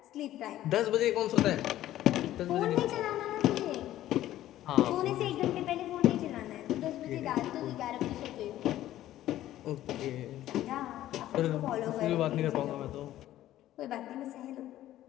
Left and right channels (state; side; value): quieter; right; 13.7 dB